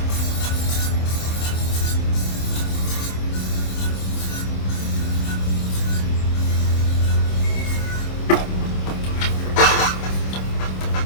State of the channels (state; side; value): late; right; 26 ms